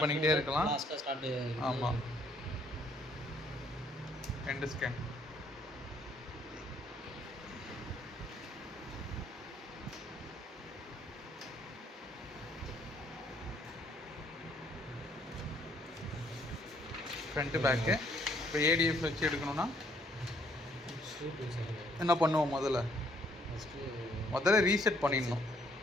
பண்ணிக்கிட்டே இருக்கலாம். ஆமாம், 2 ஸ்கேன். Front back. இப்போ ஏடிஎஃப் வச்சு எடுக்கணும்னா என்ன பண்ணுவோம்? முதல்ல ரீசெட் பண்ணிடணும்.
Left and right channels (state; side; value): normal; both; correlation 0.66